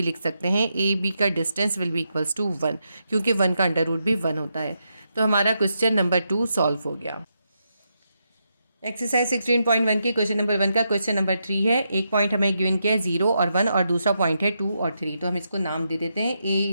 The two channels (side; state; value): both; inverted; correlation -0.83